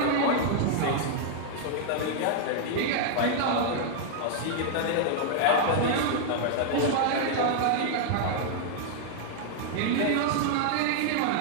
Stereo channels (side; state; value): both; different; correlation -0.01